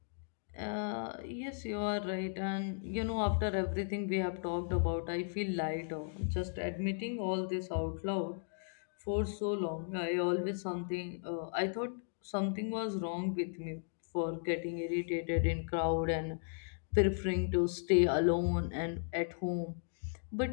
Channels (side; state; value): right; silent; digital silence